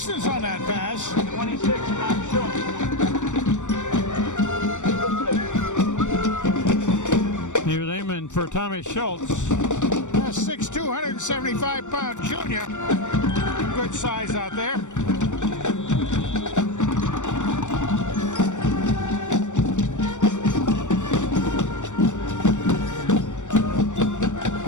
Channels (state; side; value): late; right; 0.85 ms